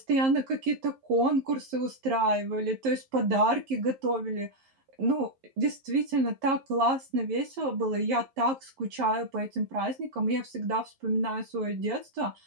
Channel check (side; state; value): left; late; 11 ms